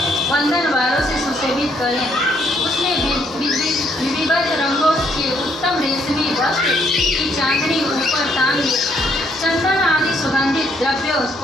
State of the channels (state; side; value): normal; both; correlation 0.70